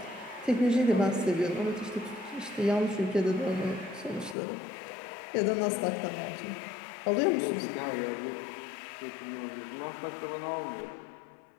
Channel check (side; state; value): right; drops out; at 4.4 s